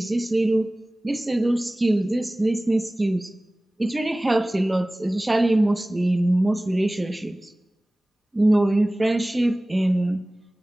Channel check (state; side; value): normal; both; correlation 0.98